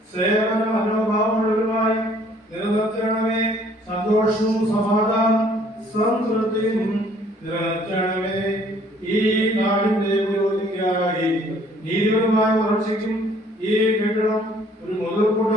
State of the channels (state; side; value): normal; both; correlation 0.59